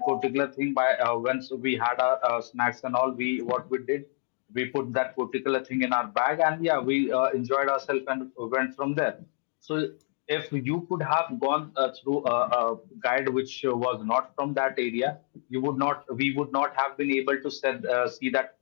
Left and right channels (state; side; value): silent; right; 55 dB below the other